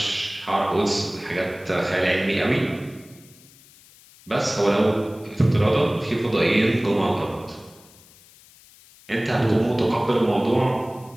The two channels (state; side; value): noise; left; hiss, 25 dB below the sound